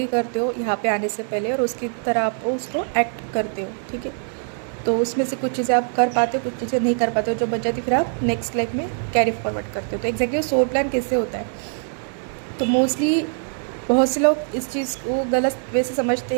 करते हो यहाँ पे आने से पहले और उसकी तरह आप उसको एक्ट करते हो। ठीक है, तो उसमें से कुछ चीज़ें आप कर पाते हो, कुछ चीज़ें नहीं कर पाते हो, जो बच जाती फिर आप नेक्स्ट लाइफ में कैरी फॉरवर्ड करते हो। तो एग्जैक्टली सोल प्लान कैसे होता है, तो मोस्टली बहुत से लोग इस चीज़ को गलत वे से समझते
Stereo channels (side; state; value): left; silent; digital silence